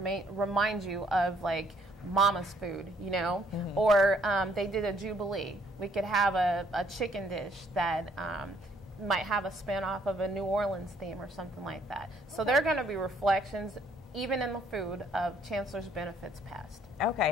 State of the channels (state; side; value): normal; both; correlation 0.65